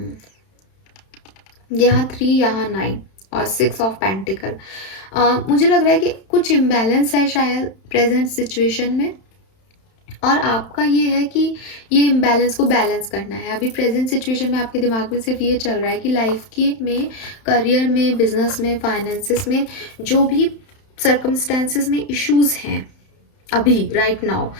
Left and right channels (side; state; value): right; late; 31 ms